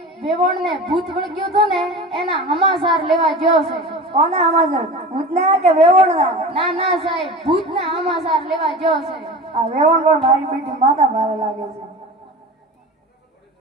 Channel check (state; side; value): normal; both; correlation 0.33